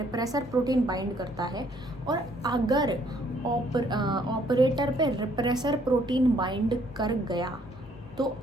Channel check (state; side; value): normal; both; correlation 0.65